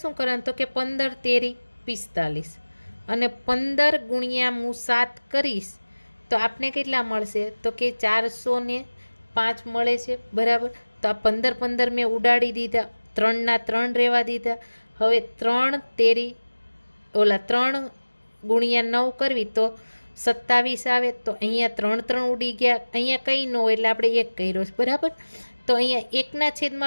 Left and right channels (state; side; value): inverted; both; correlation -1.00